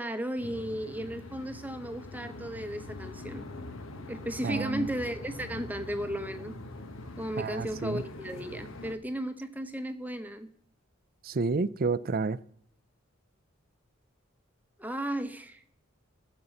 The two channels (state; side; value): normal; both; correlation 0.64